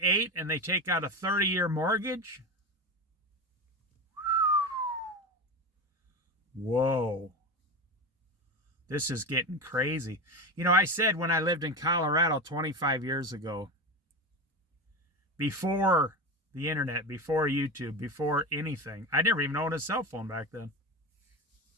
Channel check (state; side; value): normal; both; correlation 0.21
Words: and they take out a 30-year mortgage? Whoa. This is getting crazy. You know, I said when I lived in Colorado 25 years ago, before the internet, before YouTube, before anything, I never even owned a cell phone back then.